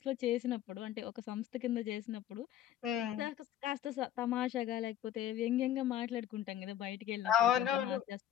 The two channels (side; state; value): right; quieter; 11.5 dB